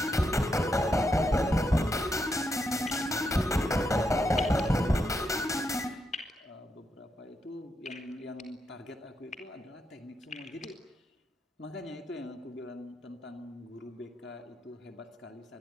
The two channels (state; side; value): normal; both; correlation 0.82